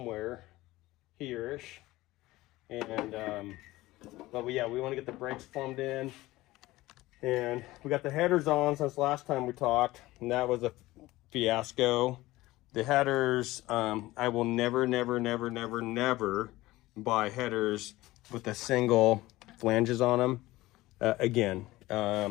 here-ish. And but yeah, we want to get the brakes formed in, and we got the headers on since last time we talked, and that was a fiasco. The headers, I will never buy headers with a single flanges on them again.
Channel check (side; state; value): right; quieter; 18.3 dB